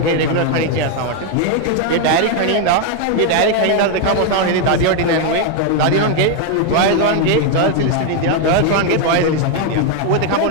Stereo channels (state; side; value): different; both; correlation 0.01